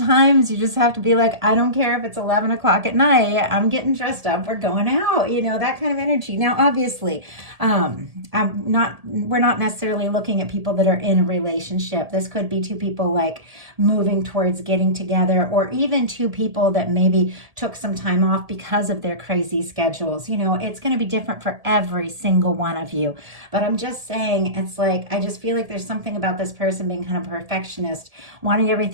you just have to be like, I don't care if it's 11 o'clock at night. I'm getting dressed up. We're going out, that kind of energy. Now, obviously, we're not necessarily looking at people that are in a relationship. This could be 2 people like moving towards getting together, or even 2 people that maybe took some time off because of their crazy schedules. It's going to be different for every single one of you. But I'm just saying, it's like, I just feel like there's something about this person being kind of a perfectionist, wanting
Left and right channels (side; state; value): left; late; 1.7 ms